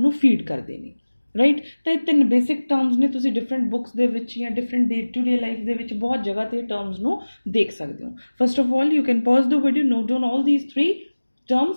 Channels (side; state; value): both; inverted; correlation -1.00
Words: ਫੀਡ ਕਰਦੇ ਨੇ, ਰਾਈਟ। ਤਾਂ ਇਹ ਤਿੰਨ ਬੇਸਿਕ ਟਰਮਸ ਨੇ, ਤੁਸੀਂ ਡਿਫਰੈਂਟ ਬੁੱਕਸ ਦੇ ਵਿੱਚ ਜਾਂ different day to day life ਦੇ ਵਿੱਚ ਬਹੁਤ ਜਗ੍ਹਾ ਤੇ ਟਰਮਸ ਨੂੰ ਦੇਖ ਸਕਦੇ ਹੋ। First of all you can pause the video, note down all these 3